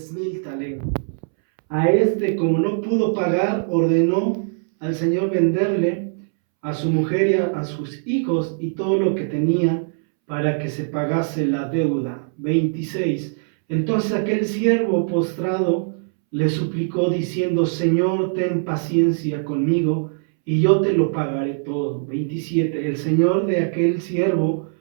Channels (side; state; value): left; silent; 65 dB below the other